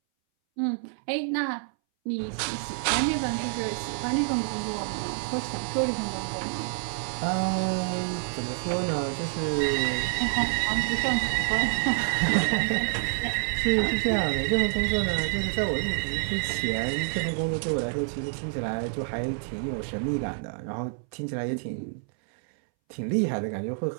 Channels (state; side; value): silent; left; 60 dB below the other